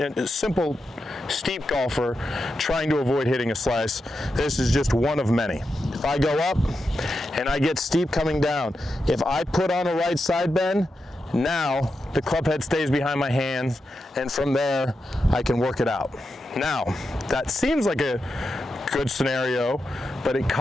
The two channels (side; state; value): both; normal; correlation 0.88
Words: a simple steep golfer trying to avoid hitting a slice, this is just one of many. If I go up and I get steep coming down, if I put on a right side bend, now the club head stays behind my hands, and from there I can work it out. Now, that seems like a good scenario, but it